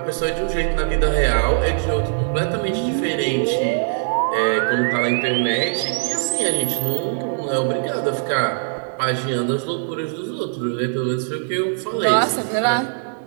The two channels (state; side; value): silent; left; 65 dB below the other